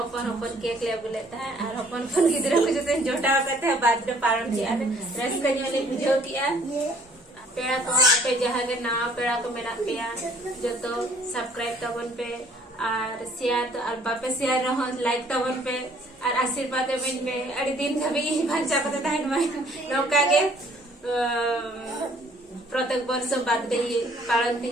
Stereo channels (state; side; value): normal; both; correlation 0.59